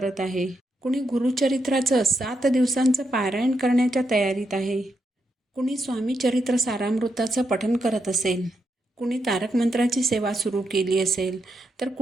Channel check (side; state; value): both; normal; correlation 0.82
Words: आहे. कुणी गुरुचरित्राचं 7 दिवसांचं पारायण करण्याच्या तयारीत आहे. कुणी स्वामी चरित्र सारामृताचं पठण करत असेल, कुणी तारक मंत्राची सेवा सुरू केली असेल, तर